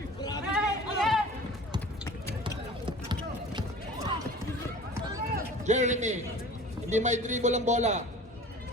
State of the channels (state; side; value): normal; both; correlation 0.42